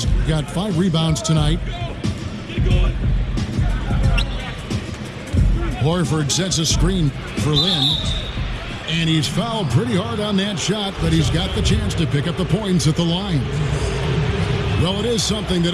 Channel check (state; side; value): identical; both; correlation 1.00